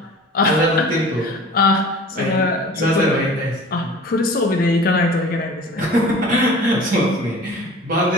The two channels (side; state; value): both; normal; correlation 0.43